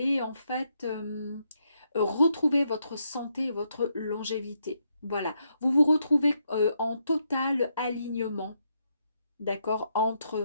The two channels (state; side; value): inverted; both; correlation -0.78